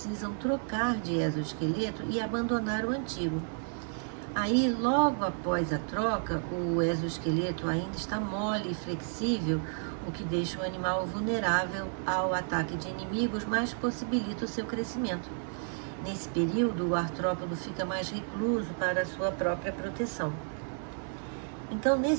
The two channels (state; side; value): silent; left; 57 dB below the other